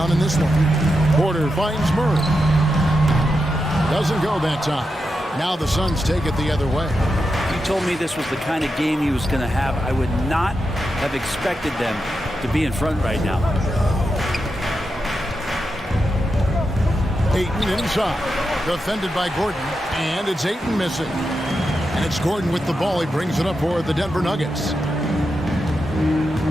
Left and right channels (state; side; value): normal; both; correlation 0.87